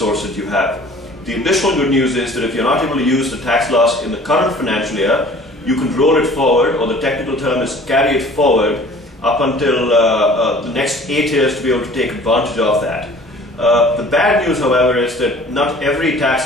that you have. The additional good news is that if you're not able to use the tax loss in the current financial year, you can roll it forward, or the technical term is carry it forward up until the next 8 years to be able to take advantage of that. The bad news, however, is that not every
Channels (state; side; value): normal; both; correlation 0.49